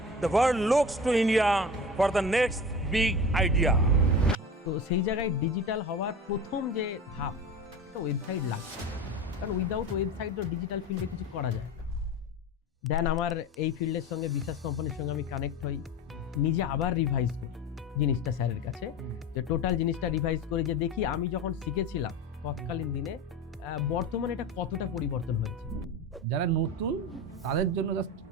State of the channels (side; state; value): both; normal; correlation 0.30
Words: the world looks to India for the next big idea. তো সেই জায়গায় ডিজিটাল হওয়ার প্রথম যে ধাপ, একটা ওয়েবসাইট লাগবে। কারণ উইদাউট ওয়েবসাইট তো ডিজিটাল ফিল্ডে কিছু করা যায় না। দেন আমার এই ফিল্ডের সঙ্গে বিশ্বাস কোম্পানির সঙ্গে আমি কানেক্ট হই, নিজে আবার রিভাইজ করি জিনিসটা স্যারের কাছে, যে টোটাল জিনিসটা রিভাইজ করি, যে দেখি আমি যখন শিখেছিলাম তৎকালীন দিনে বর্তমানে এটা কতটা পরিবর্তন হয়েছে। যারা নতুন তাদের জন্য জাস্ট